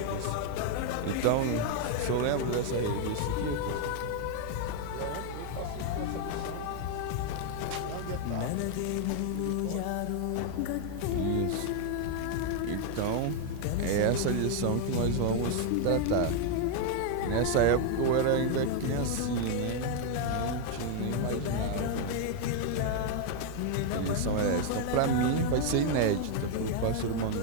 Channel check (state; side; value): different; both; correlation 0.00